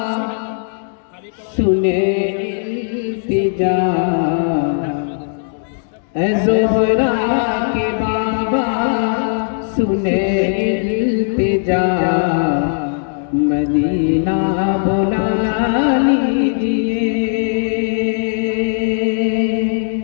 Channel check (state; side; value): silent; right; digital silence